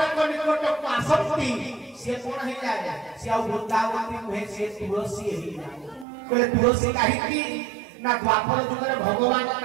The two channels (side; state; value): left; drops out; at 6.1 s